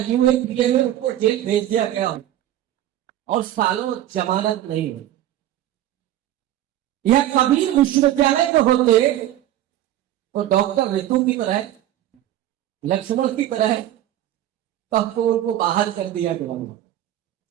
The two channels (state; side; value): quieter; left; 12.9 dB